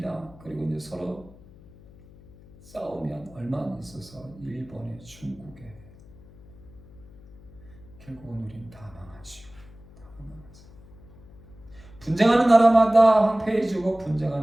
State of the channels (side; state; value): left; noise; hum, 22 dB below the sound